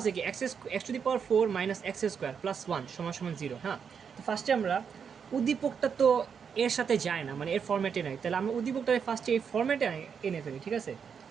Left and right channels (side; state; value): left; quieter; 6.8 dB